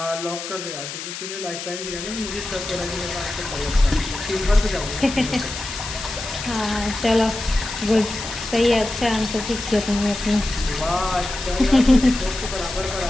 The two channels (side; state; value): left; noise; hiss, 8 dB below the sound